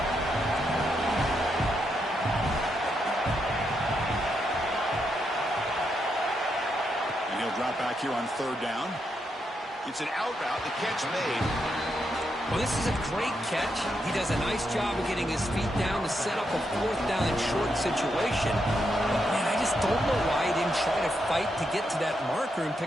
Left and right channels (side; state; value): both; normal; correlation 0.81